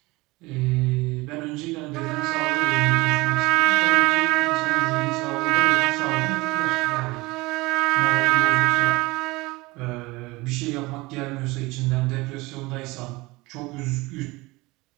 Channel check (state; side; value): quieter; left; 22.2 dB